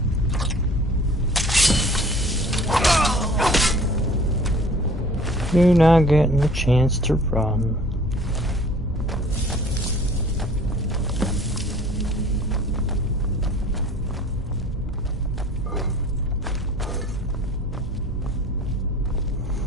You're not getting a chance to run.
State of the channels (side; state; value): both; normal; correlation 0.50